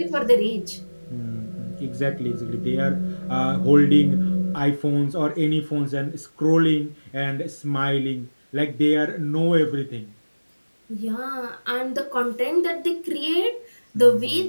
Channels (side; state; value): both; inverted; correlation -1.00